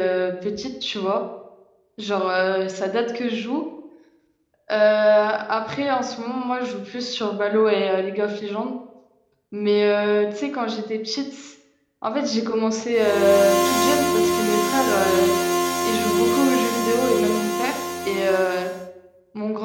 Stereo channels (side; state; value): both; identical; correlation 1.00